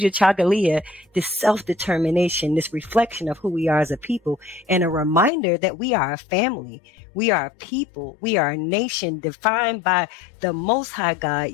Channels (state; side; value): drops out; right; at 5.3 s